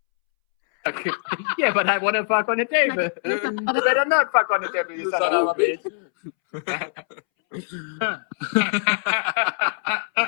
Yeah, but I want to fuck on the table. You better not fuck on the table, you son of a bitch.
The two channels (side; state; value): right; silent; 64 dB below the other